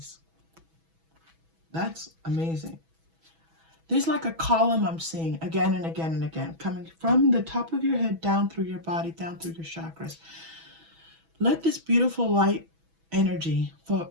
That's amazing. There's like a column I'm seeing again and again and again, coming from the top of your head down through your body, down through your chakras. Let this beautiful light energy flow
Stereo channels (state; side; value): late; left; 6.1 ms